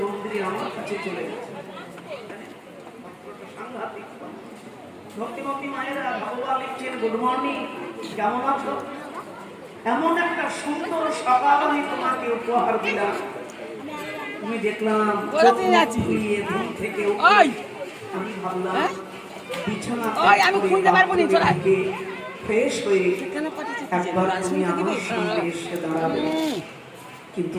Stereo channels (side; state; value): both; identical; correlation 1.00